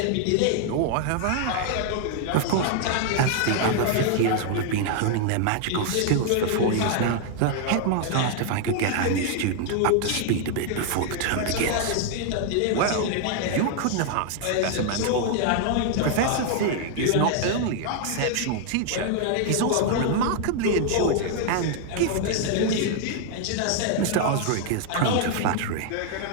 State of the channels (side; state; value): both; different; correlation 0.00